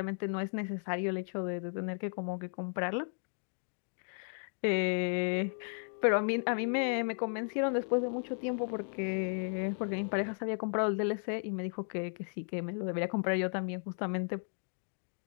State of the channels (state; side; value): silent; right; 55 dB below the other